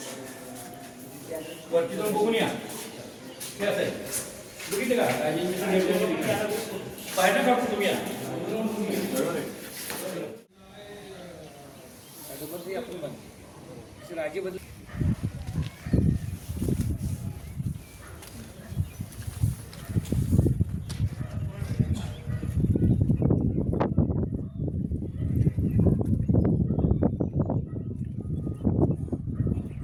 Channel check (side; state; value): both; identical; correlation 1.00